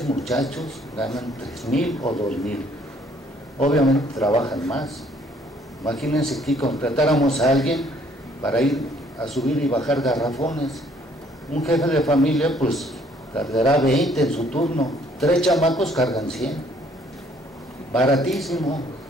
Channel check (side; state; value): both; normal; correlation 0.62